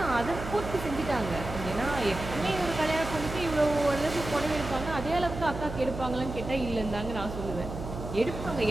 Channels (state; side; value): noise; right; hum, 8 dB below the sound